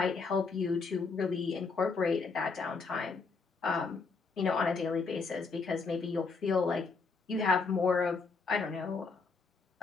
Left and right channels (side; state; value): right; quieter; 4.6 dB